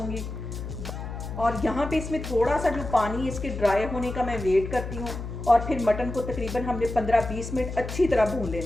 और यहाँ पे इसमें थोड़ा सा जो पानी इसके ड्राई होने का मैं वेट करती हूँ और फिर मटन को तकरीबन हमने 15-20 मिनट अच्छी तरह भून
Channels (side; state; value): left; noise; hum, 7 dB below the sound